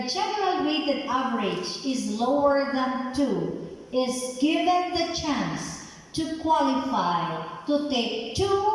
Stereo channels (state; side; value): identical; both; correlation 1.00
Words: general weighted average is lower than 2 is given the chance to qualify to take